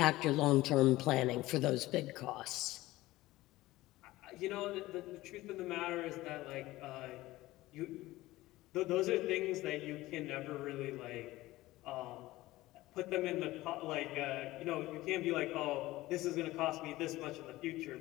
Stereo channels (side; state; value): right; quieter; 17.8 dB